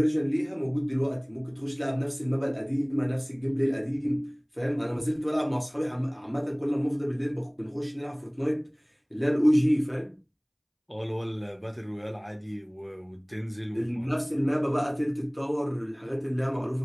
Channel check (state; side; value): identical; both; correlation 1.00